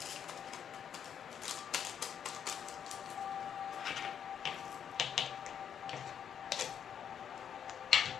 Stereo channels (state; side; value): quieter; right; 8.4 dB